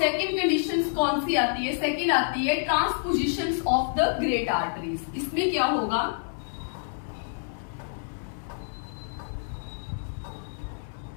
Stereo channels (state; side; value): silent; right; digital silence